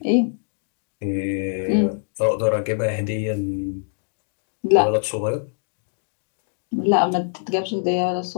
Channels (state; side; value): silent; right; digital silence